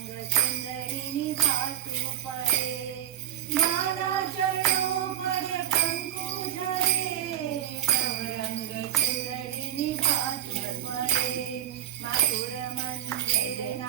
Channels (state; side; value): quieter; left; 11.5 dB